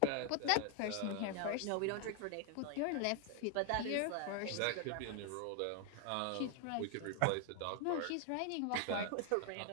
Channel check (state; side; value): different; both; correlation 0.01